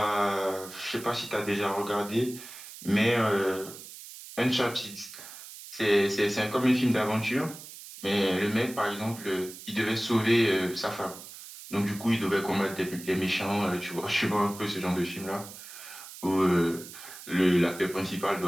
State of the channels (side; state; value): right; noise; hiss, 14 dB below the sound